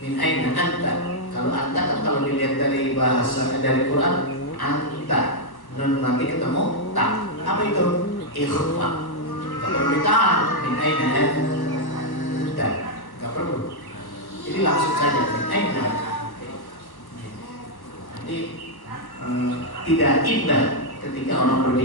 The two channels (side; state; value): right; late; 1.1 ms